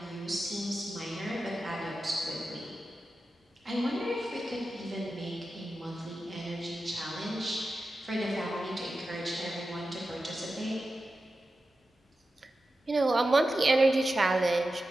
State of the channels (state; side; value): normal; both; correlation 0.92